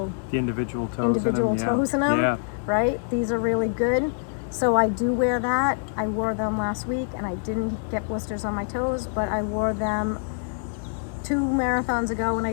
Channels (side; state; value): right; silent; 62 dB below the other